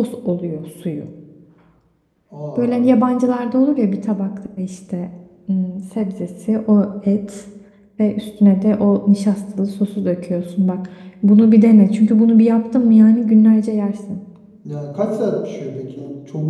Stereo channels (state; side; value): identical; both; correlation 1.00